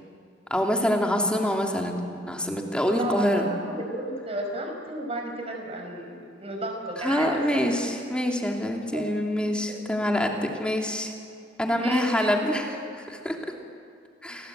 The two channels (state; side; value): normal; both; correlation 0.69